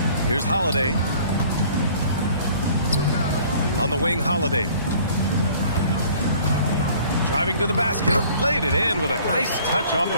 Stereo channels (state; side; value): inverted; both; correlation -0.53